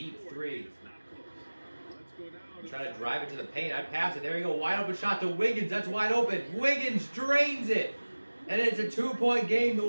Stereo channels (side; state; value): both; inverted; correlation -1.00